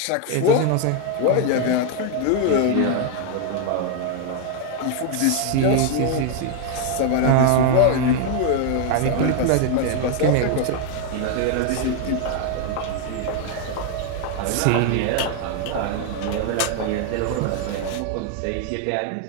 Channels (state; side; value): different; both; correlation 0.01